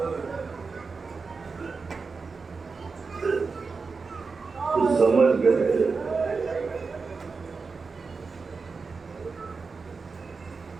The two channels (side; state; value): left; quieter; 4.6 dB